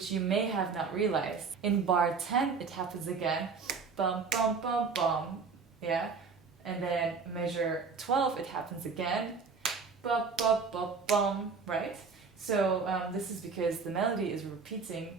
you may have not realized. In bar 10 it happens again, bum bum bum bum, yeah, and then measure 12 it happens again, ba ba ba bum, right? So this is because the melody is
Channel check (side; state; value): left; quieter; 5.1 dB